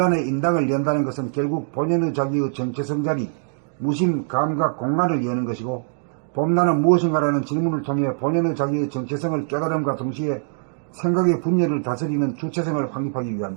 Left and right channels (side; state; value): left; silent; digital silence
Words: 인당을 연다는 것은 결국 본연의 자기의 정체성 자리, 무심, 감각, 공간을 여는 것이고 봄나는 무엇인가라는 질문을 통해 본연의 자기의 정체성을 깨달음과 동시에 생각의 분열을 다스리는 주체성을 확립하기